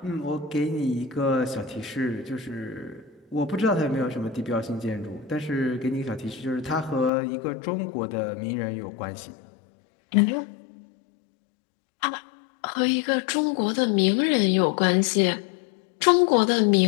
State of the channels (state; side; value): drops out; right; at 7.1 s